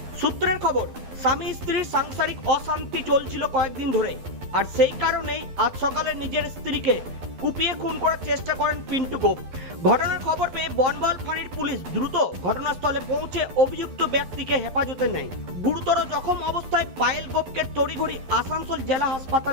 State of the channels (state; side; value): late; left; 12 ms